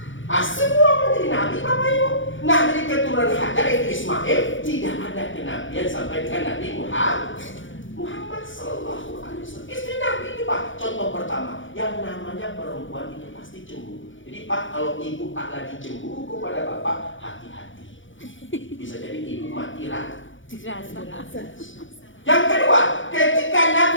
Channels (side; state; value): right; late; 0.56 ms